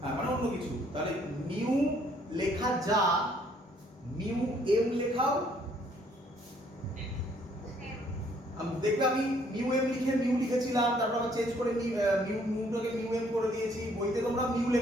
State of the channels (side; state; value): both; normal; correlation 0.64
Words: মানে অন্য কিছু। তাহলে মিউ লেখা যা, মিউ এম লেখাও। দেখবে আমি মিউ এম লিখে মিউ লিখেছিলাম, তারপর আবার চেঞ্জ করে মিউটাকে মিউ এম করে দিয়েছি, বইতে তোমরা মিউ